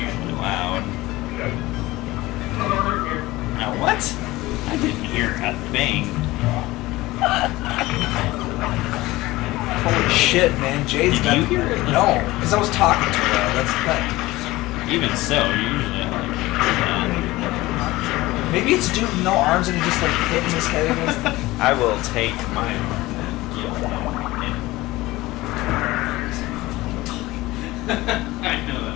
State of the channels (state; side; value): quieter; right; 19.0 dB